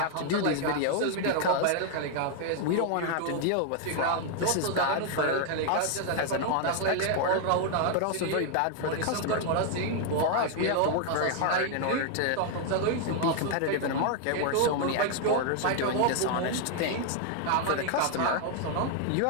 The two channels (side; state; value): both; different; correlation 0.00